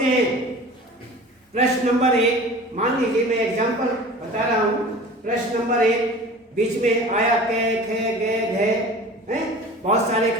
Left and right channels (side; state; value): both; normal; correlation 0.40